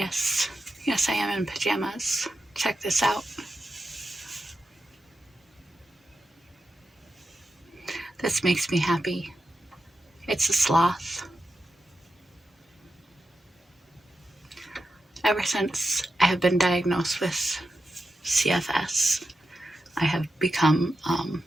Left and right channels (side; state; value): both; normal; correlation 0.90